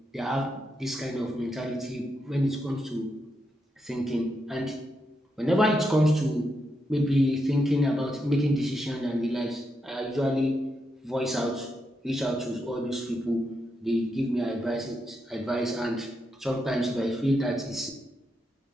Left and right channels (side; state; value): both; normal; correlation 0.83